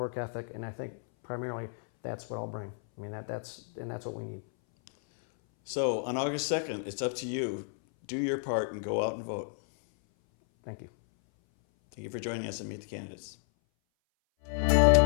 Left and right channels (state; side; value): silent; right; 57 dB below the other